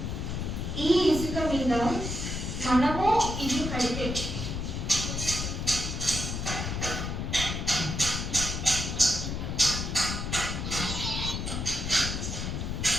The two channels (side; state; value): left; noise; rumble, 3 dB below the sound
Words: ఈ ఇసుక మీద మనము ఇల్లు కడితే